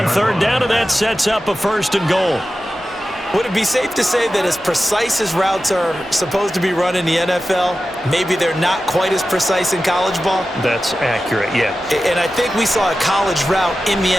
third down, and that sets up a 1st and goal. Would it be safe to say that as precise as routes are supposed to be run in the NFL, maybe they're not quite as precise in college ball? That's accurate, yeah. And I think we saw a college route in the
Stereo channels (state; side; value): normal; both; correlation 0.93